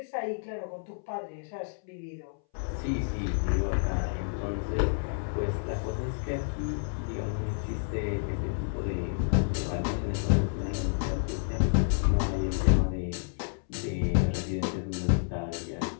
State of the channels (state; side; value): silent; right; 58 dB below the other